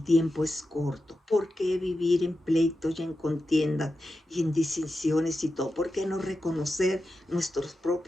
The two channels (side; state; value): both; normal; correlation 0.91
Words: tiempo es corto. ¿Por qué vivir en pleitos y en contiendas y en distinciones y todo? ¿Por qué no reconocer nuestros